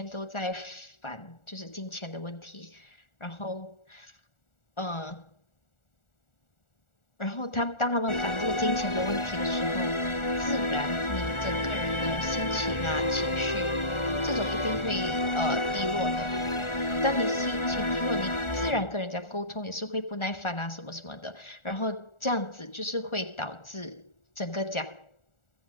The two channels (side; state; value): right; late; 1.4 ms